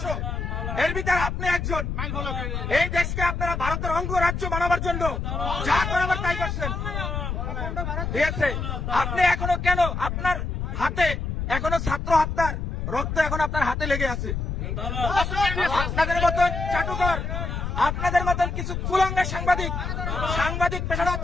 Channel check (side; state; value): left; noise; rumble, 3 dB below the sound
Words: এর ভিতরে আপনি একজন। এই দেশকে আপনারা ভারতের অঙ্গরাজ্য বানাবার জন্য যা করাবার তাই করছেন, ঠিক আছে? আপনি এখনো কেন আপনার হাতে এখনো ছাত্র হত্যার রক্ত এখন আপনার হাতে লেগে আছে? আপনাদের মতন চাটুকর, আপনাদের মতন কিছু কুলাঙ্গা সাংবাদিক পেশাটা